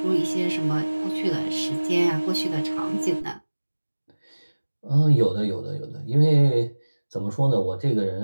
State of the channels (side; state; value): both; inverted; correlation -1.00